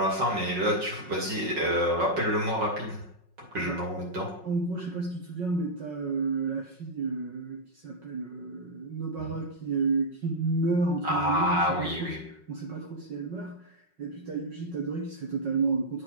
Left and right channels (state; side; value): late; left; 5.4 ms